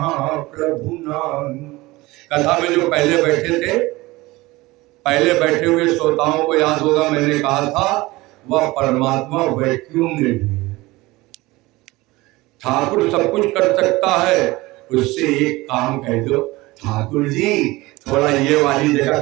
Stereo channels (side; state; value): left; quieter; 20.6 dB